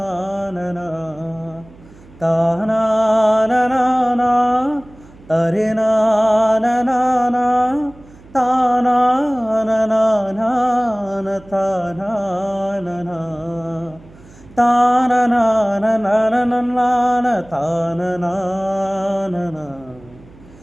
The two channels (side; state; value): right; noise; hum, 23 dB below the sound